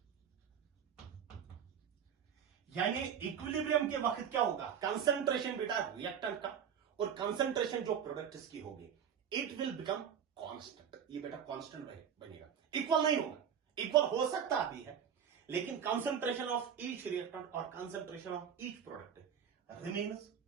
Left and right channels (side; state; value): left; quieter; 8.2 dB